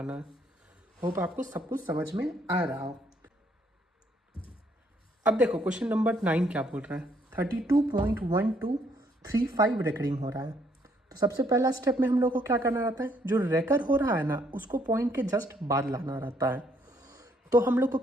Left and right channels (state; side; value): normal; both; correlation 0.68